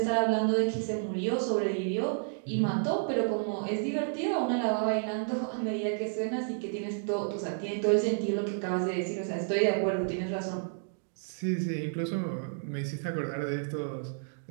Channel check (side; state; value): left; silent; digital silence